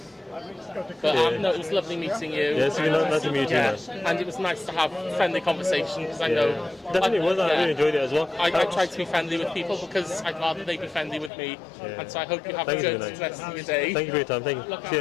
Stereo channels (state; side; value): drops out; right; at 11.3 s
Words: But no, it was lovely meeting you. Yeah, it's been nice to meet you too, man. And it was nice to have friendly conversation because I know. Definitely was. I really enjoyed it as well. I try to be friendly with people because I'd rather they be friendly with me. And so I hope you have a good rest of your day. Thank you for your time. Thank you. See